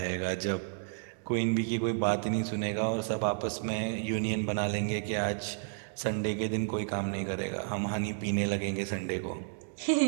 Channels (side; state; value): left; silent; digital silence